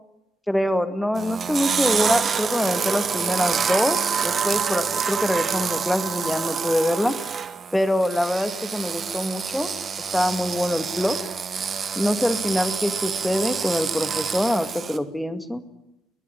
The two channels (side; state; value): both; normal; correlation 0.90